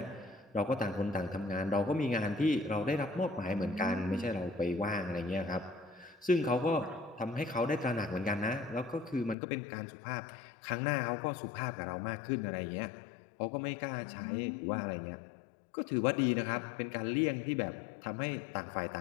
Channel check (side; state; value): right; drops out; at 9.3 s